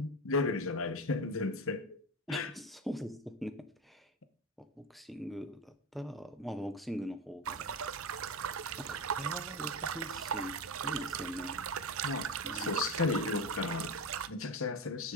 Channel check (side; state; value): both; normal; correlation 0.20